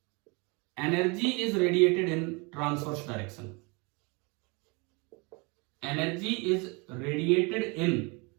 Energy is radiated in transverse direction. Energy is radiated in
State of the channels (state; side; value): quieter; left; 29.5 dB